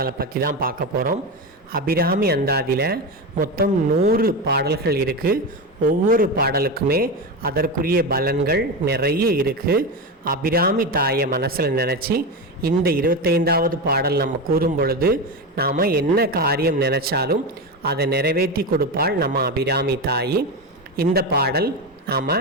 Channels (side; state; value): both; normal; correlation 0.18